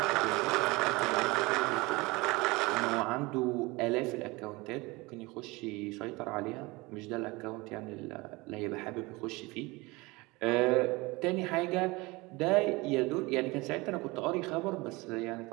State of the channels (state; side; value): quieter; left; 23.5 dB